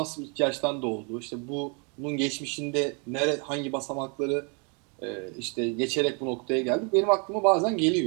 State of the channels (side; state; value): left; quieter; 36.5 dB